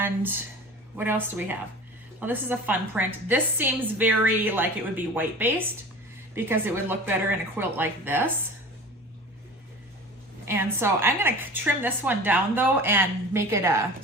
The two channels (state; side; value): normal; both; correlation 0.37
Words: what else do we have? Well, this is a fun print. This seems very like it would be white based because it would look better in a quilt like this. And so I'm gonna trim this one down though and make it a